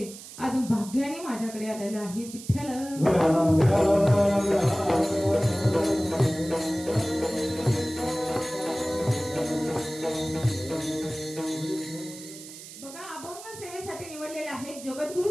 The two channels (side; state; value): right; noise; hiss, 15 dB below the sound